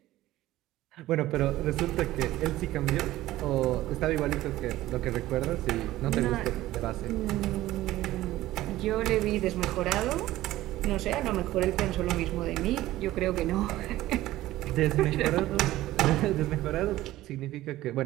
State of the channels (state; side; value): quieter; left; 15.8 dB